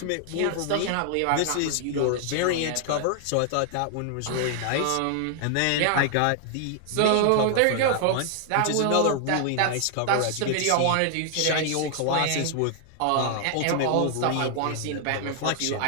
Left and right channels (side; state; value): both; different; correlation 0.00